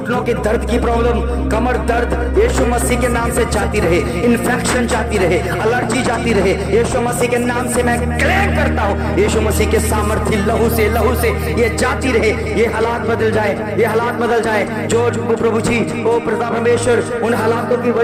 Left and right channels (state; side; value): identical; both; correlation 1.00